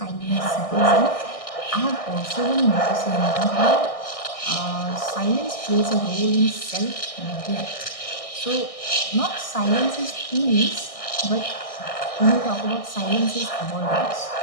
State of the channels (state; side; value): late; right; 1.6 ms